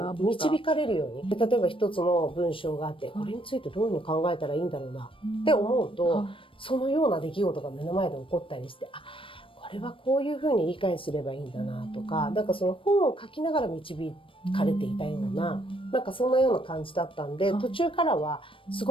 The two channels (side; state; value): right; late; 0.25 ms